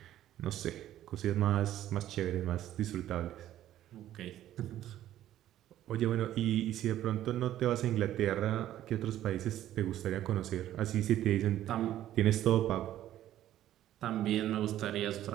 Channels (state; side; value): quieter; left; 12.7 dB